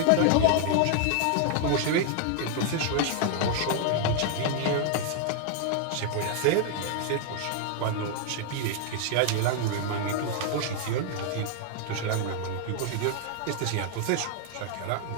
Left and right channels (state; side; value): different; both; correlation 0.00